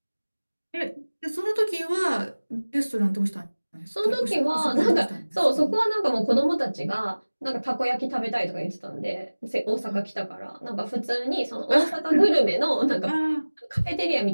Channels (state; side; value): inverted; both; correlation -1.00